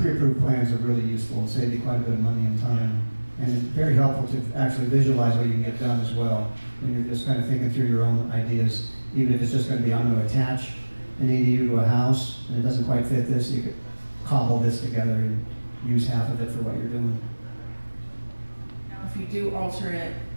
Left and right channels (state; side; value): inverted; both; correlation -1.00